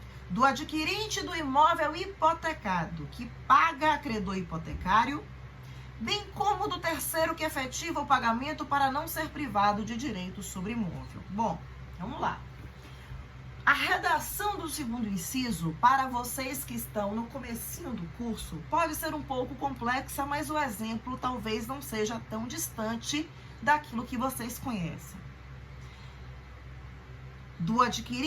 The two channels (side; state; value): both; identical; correlation 1.00